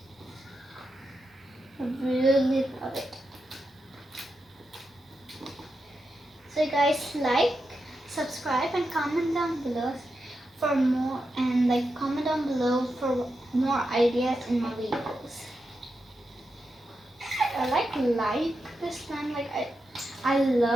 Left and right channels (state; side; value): normal; both; correlation 0.87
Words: I really love it. So guys, like, subscribe, and comment down below for more, and like comment down below for more ideas in my videos. I like this slime, like I